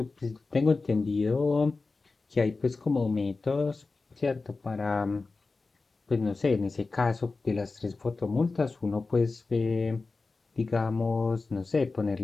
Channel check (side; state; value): right; quieter; 3.8 dB